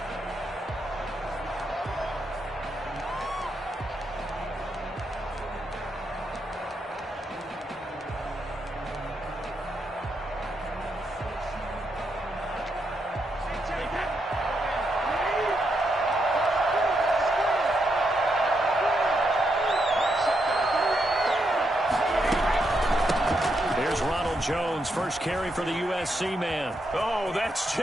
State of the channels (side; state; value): both; normal; correlation 0.81